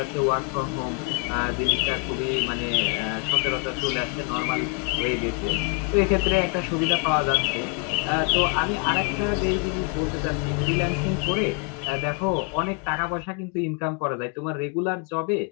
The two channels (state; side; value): quieter; right; 33.7 dB